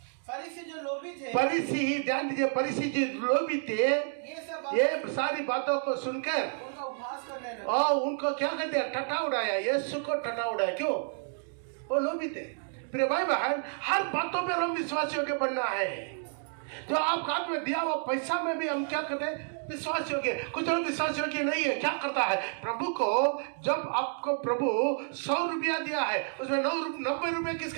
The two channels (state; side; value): silent; left; 58 dB below the other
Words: फरीसी जो लोभी थे, फरीसी ध्यान दीजिए, फरीसी जो लोभी थे ये सारी बातों को सुनकर उनका उपहास करने लगे और उनको क्या कर दिया? टटा उड़ाया। यीशु को टटा उड़ाया। क्यों? वो लोभी थे। प्रिय भाई बहन, हर बातों पे हम विश्वास योग्य बनना है। जो आपका हाथ में दिया हुआ पैसा में भी हम क्या करते हैं? विश्वास योग्य। कुछ लोग विश्वास योग्य नहीं है। क्या करता है? प्रभु को जब आपको प्रभु 100 रुपया दिया है उसमें 90 रुपया